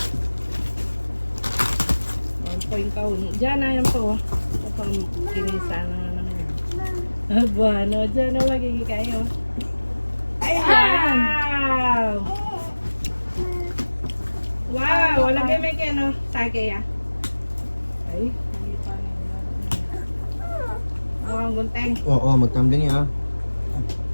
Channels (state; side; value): inverted; both; correlation -1.00